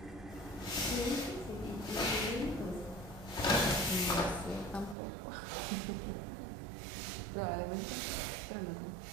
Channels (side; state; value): left; drops out; at 5.0 s